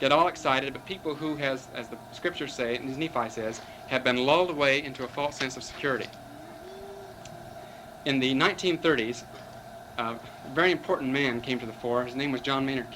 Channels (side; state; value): both; identical; correlation 1.00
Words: all excited, but people who, as the scriptures say, and as Nephi says, have been lulled away into a false sense of security. In the 1930s, a very important man came to the fore. His name was John Maynard